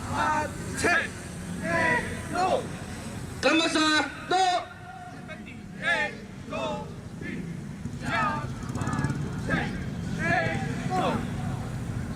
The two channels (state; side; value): identical; both; correlation 1.00